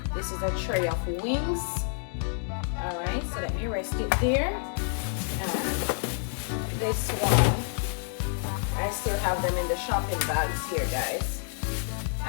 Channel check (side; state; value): right; silent; digital silence